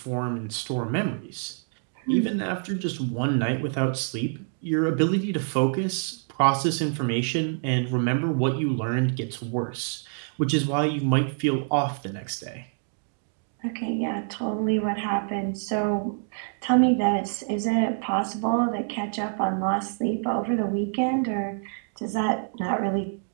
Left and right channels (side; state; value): left; silent; 56 dB below the other